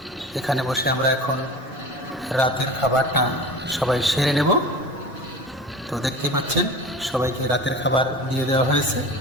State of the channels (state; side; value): normal; both; correlation 0.35